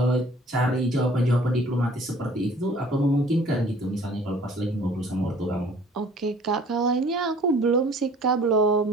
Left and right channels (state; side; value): normal; both; correlation 0.52